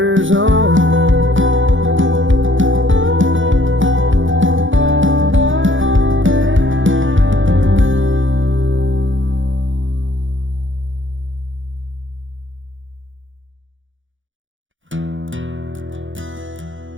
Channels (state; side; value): late; left; 0.56 ms